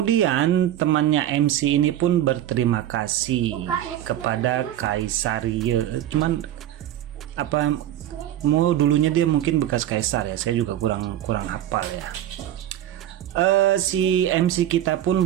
temannya MC ini pun berterima kasih kepada Kaisar Ye. Cuman apa mau dulunya dia mungkin bekas kaisar ya, saya juga kurang hafal ya. Si MC kita pun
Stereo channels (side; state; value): left; quieter; 12.1 dB